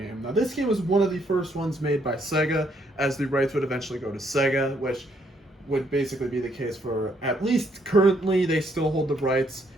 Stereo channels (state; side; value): normal; both; correlation 0.71